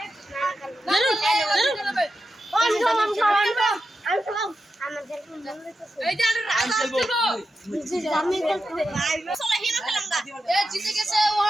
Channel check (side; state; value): both; normal; correlation 0.89